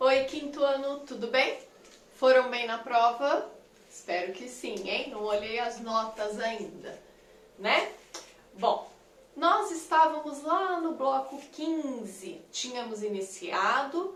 Oi, quinto ano, tudo bem? Foram bem na prova? Espero que sim, hein? Não olhei as notas ainda, né? Bom, nós estávamos lá no bloco 15, tínhamos iniciado,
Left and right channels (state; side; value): identical; both; correlation 1.00